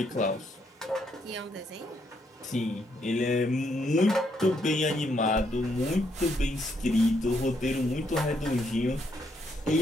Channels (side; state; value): both; normal; correlation 0.74